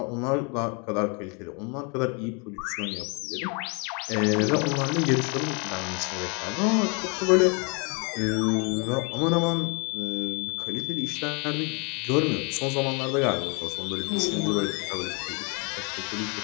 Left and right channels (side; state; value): right; quieter; 33.9 dB